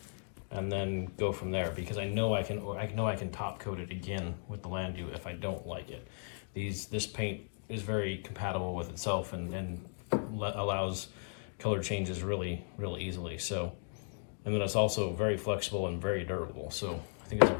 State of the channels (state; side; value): silent; right; digital silence